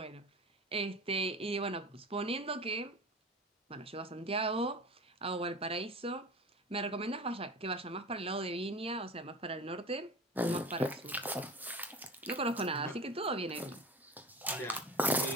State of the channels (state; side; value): normal; both; correlation 0.34